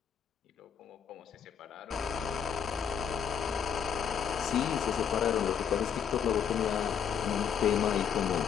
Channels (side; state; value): right; quieter; 7.7 dB